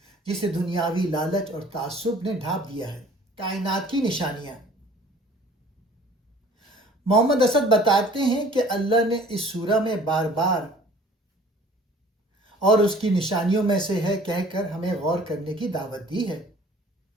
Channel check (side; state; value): both; normal; correlation 0.51